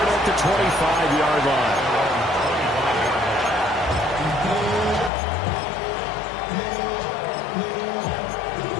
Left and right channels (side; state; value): right; drops out; at 5.1 s